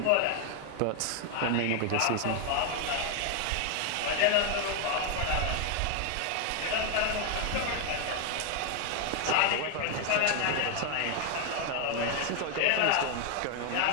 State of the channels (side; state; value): both; different; correlation 0.01